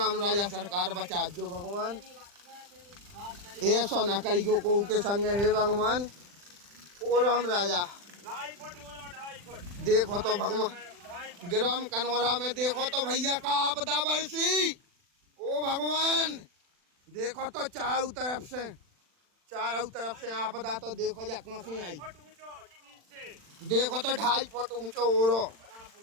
राजा सरकार बचा जो भगवान। ऐसा ना करियो को के संग हे भगवान। ओ राम राजा 2.5 फुट। देखो तो भगवान ग्राम कनौरा में देखो तो भैया का आपदा बरसी। ओ भगवान देखो तो चारों तरफ से आपदा तो देखो जा कहाँ से आई। देखो तो 2.5 फुट ऊंचो ओरो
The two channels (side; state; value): left; late; 40 ms